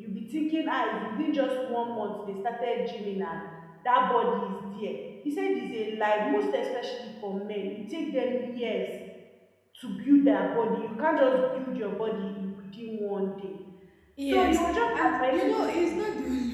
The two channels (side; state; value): both; identical; correlation 1.00